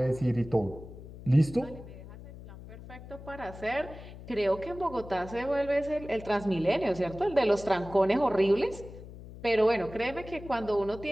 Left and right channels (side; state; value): left; noise; hum, 15 dB below the sound